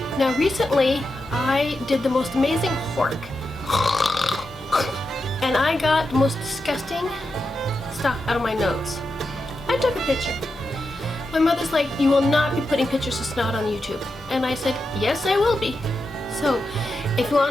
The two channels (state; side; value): normal; both; correlation 0.88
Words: Now recently, I did the most amazing hork. And I got the most disgusting stuff out of my nose. I took a picture. My mother's like, you will not be putting pictures of snot on YouTube. And I said, yes, I will be. So, if you